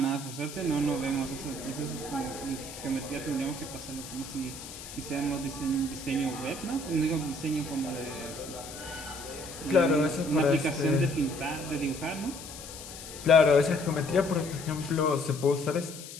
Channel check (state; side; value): noise; left; hiss, 13 dB below the sound